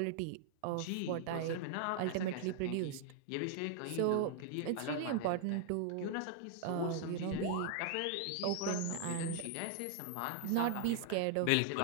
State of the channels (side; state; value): both; different; correlation 0.00